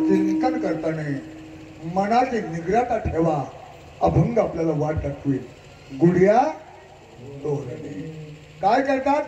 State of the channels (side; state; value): both; identical; correlation 1.00